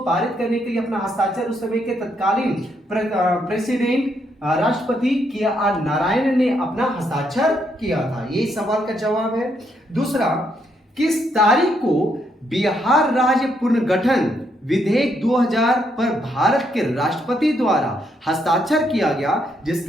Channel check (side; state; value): both; normal; correlation 0.75